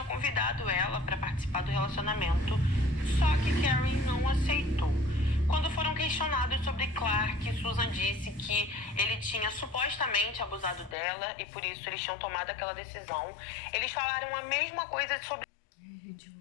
convidado ela para participar do relacionamento. Só que Karen não aceitou. Quando foram questionados sobre Clark, Susan disse que ele tinha supostamente abusado dela e por isso eles tinham tomado aquela decisão. Eles falaram a mesma coisa sobre... Gente, eu vou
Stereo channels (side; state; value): right; drops out; at 11.0 s